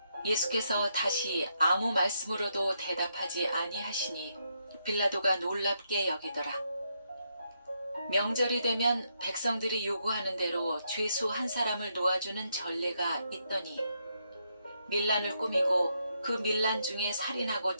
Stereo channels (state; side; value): inverted; both; correlation -0.78